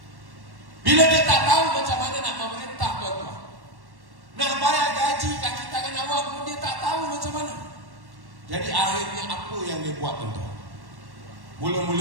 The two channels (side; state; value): left; late; 1.1 ms